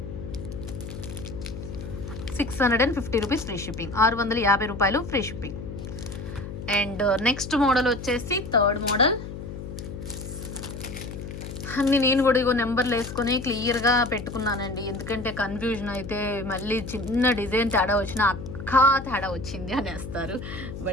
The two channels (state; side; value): noise; left; hum, 9 dB below the sound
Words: 650 రూపీస్ ఫ్రీ షిప్పింగ్. 650 రూపాయలు free shipping. And next model వచ్చేసి థర్డ్ మోడల్. అన్ని నేను కూడా ఇగో నెంబర్లు వేసుకొని క్లియర్గా పెట్టుకున్నానండి. ఎందుకంటే కన్ఫ్యూజన్ అయితే మళ్ళీ చిన్న డిజైన్ తేడా వచ్చినా తేడా వచ్చింది అనేస్తారు.